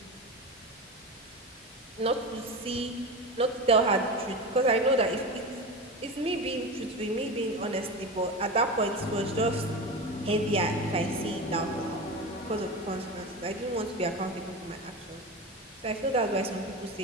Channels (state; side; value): normal; both; correlation 0.25